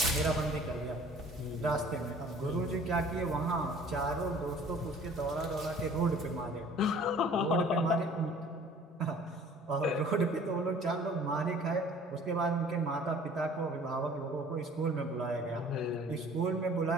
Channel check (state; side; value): normal; both; correlation 0.50